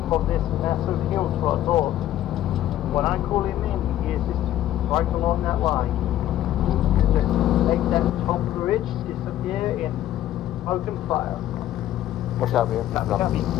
of this massive hill to our north. When I call him in, he is just right along that line. Just make that top bridge disappear in smoke and fire. Watch out, man. Copy.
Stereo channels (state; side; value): quieter; right; 13.0 dB